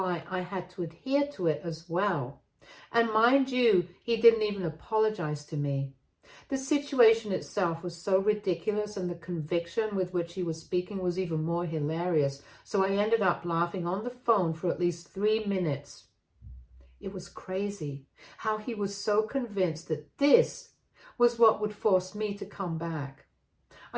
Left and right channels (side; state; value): both; identical; correlation 1.00